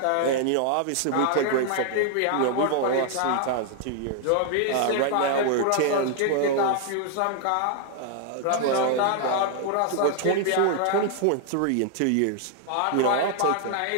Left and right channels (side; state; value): both; different; correlation 0.00